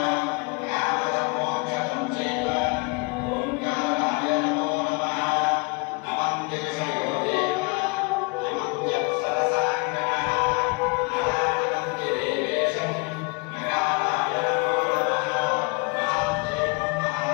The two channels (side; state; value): right; quieter; 30.2 dB